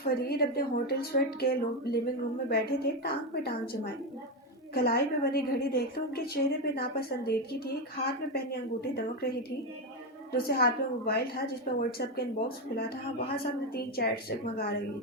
اپنے ہوٹل سویٹ کے لیونگ روم میں بیٹھے تھے، ٹانگ پہ ٹانگ جمائے۔ کلائی پہ بنی گھڑی دیکھتے ان کے چہرے پہ ناپسندیدگی تھی۔ ایک ہاتھ میں پہنی انگوٹھی دمک رہی تھی، دوسرے ہاتھ میں موبائل تھا جس پہ واٹس ایپ کا ان باکس کھلا تھا، وہاں سامنے 3 چیٹس جگمگا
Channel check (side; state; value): both; normal; correlation 0.10